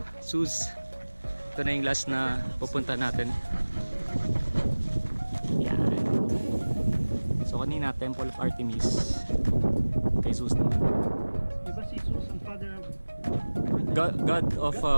Zeus. Ito na yung last na pupunta natin. Yan. So kanina Temple of Artemis. Kay Zeus naman. Diba si Zeus ang father of God of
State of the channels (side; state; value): both; inverted; correlation -1.00